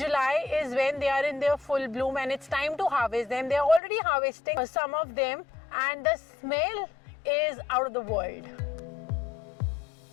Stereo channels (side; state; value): right; drops out; at 3.8 s